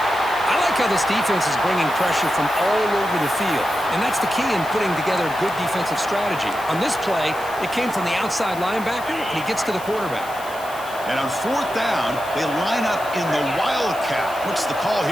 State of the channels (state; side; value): noise; left; hiss, 17 dB below the sound